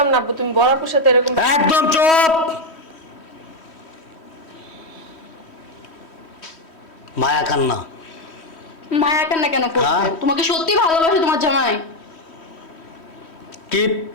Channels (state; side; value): late; right; 3.1 ms